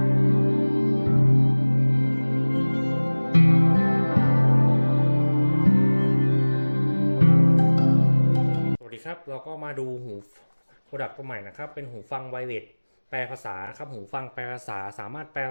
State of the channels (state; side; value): inverted; both; correlation -1.00